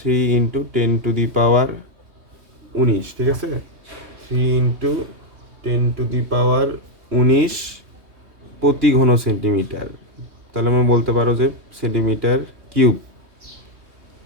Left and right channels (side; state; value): left; late; 3.2 ms